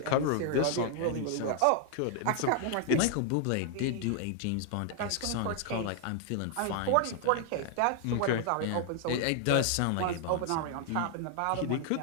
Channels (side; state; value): both; different; correlation 0.00